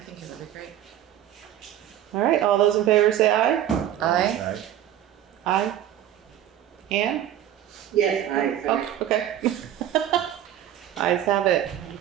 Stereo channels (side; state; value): left; quieter; 11.4 dB